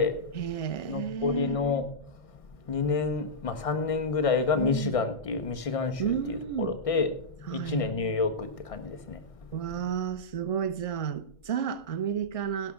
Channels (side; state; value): right; late; 1.6 ms